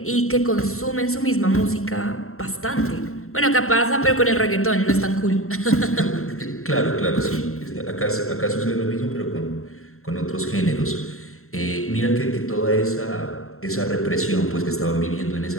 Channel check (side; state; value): right; late; 0.62 ms